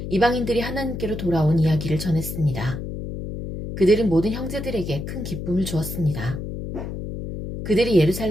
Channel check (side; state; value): left; noise; hum, 7 dB below the sound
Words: 이방인들이 하나님께로 돌아온 이야기를 전했습니다. 그들은 모든 형제들에게 큰 기쁨을 주었습니다. 그들이